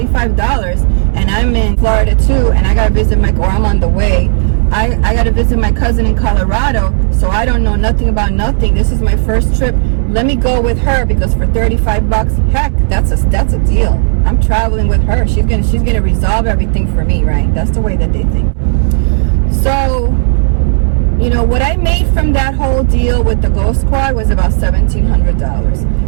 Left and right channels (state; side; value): silent; left; digital silence